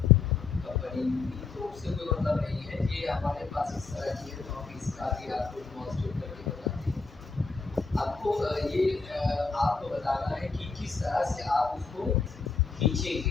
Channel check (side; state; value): right; quieter; 4.6 dB